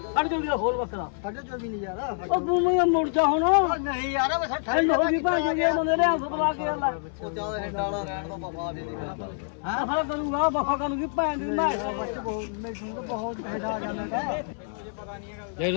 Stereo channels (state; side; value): silent; right; 60 dB below the other